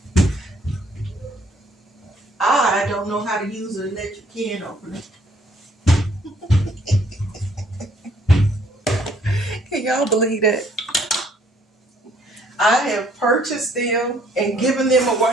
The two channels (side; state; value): both; normal; correlation 0.64